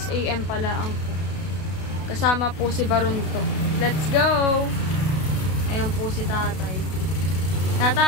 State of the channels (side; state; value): right; late; 33 ms